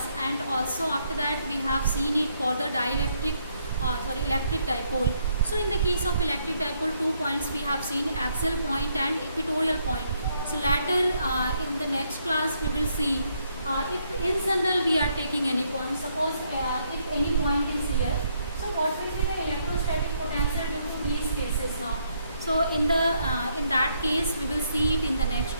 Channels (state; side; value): inverted; both; correlation -0.73